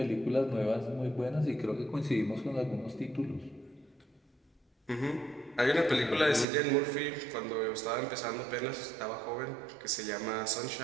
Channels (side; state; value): left; drops out; at 6.5 s